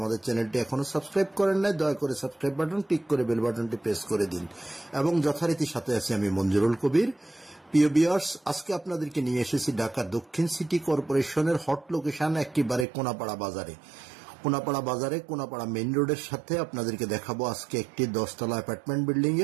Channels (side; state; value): left; drops out; at 12.9 s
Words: চ্যানেলটি এখনো সাবস্ক্রাইব করেন নাই, দয়া করে সাবস্ক্রাইব বাটন ক্লিক করে বেল বাটনটি প্রেস করে দিন। এবং যথারীতি সাথে আছি আমি মঞ্জুরুল কবির। প্রিয় ভিউয়ার্স, আজকে আপনাদেরকে নিয়ে এসেছি ঢাকা দক্ষিণ সিটি কর্পোরেশনের হট লোকেশন একেবারে কোনাপাড়া বাজারে। কোনাপাড়া মেইন রোডের সাথে আপনাদেরকে দেখাবো আজকে একটি 10 তলা অ্যাপার্টমেন্ট বিল্ডিং